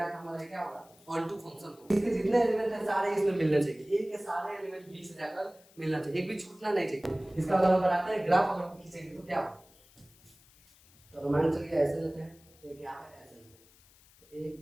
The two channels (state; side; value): noise; left; hiss, 27 dB below the sound